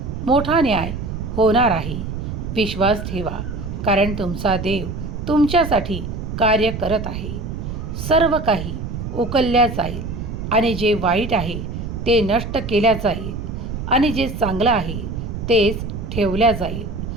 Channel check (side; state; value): right; noise; rumble, 6 dB below the sound